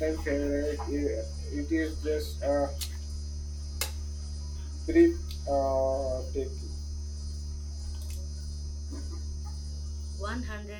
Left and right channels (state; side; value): identical; both; correlation 1.00